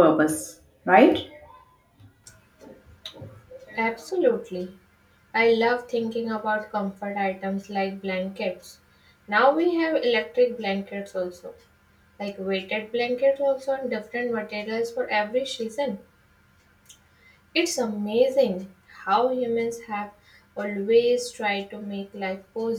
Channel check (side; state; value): both; identical; correlation 1.00